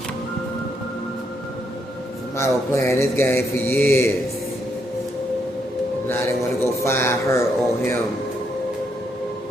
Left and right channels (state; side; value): normal; both; correlation 0.76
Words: Somebody was playing this game for years. Now they want to go find her or him.